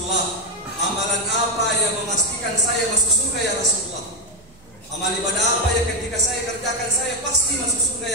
amalan apa yang memastikan saya masuk surga ya Rasulullah? Amal ibadah apa yang ketika saya kerjakan saya pasti masuk surga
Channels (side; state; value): right; noise; hum, 28 dB below the sound